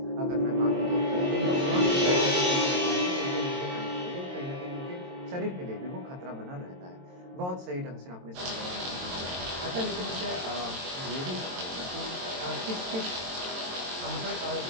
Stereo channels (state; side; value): late; left; 22 ms